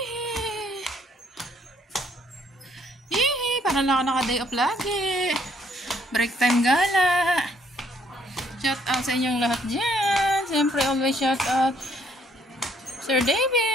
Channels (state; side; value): normal; both; correlation 0.67